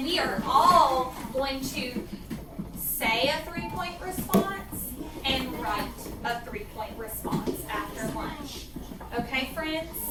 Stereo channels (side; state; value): both; identical; correlation 1.00